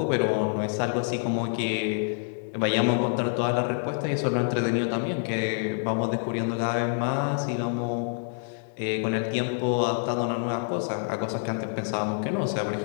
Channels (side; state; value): right; silent; digital silence